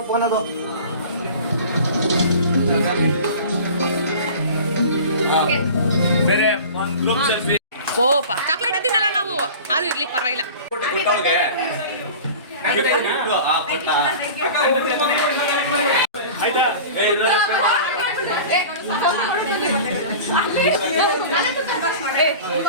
ಫೋನ್ ಅದು. ಓಪ ಚಾಕ್ಲೇಟ್ ತಿನ್ನಲ್ಲ ನಾವು, ಅದು ಇರ್ಲಿ ಪರವಾಗಿಲ್ಲ.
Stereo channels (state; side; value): inverted; both; correlation -0.38